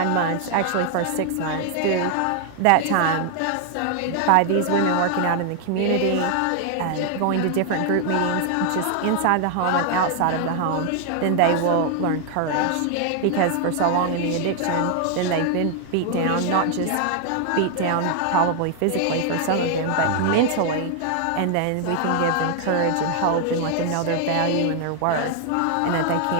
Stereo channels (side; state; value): both; different; correlation 0.00